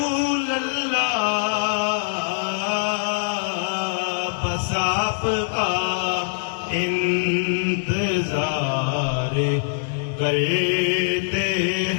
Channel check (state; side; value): silent; right; digital silence